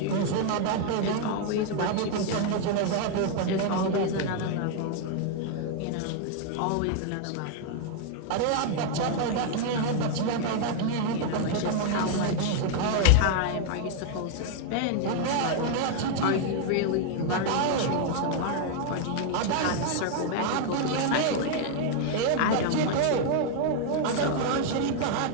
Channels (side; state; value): both; different; correlation 0.00